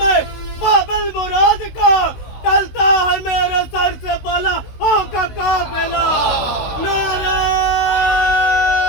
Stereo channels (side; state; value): right; late; 16 ms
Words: بابل مراد کا، ٹلتا ہے میرے سر سے بلا کا قافلہ. نعرہ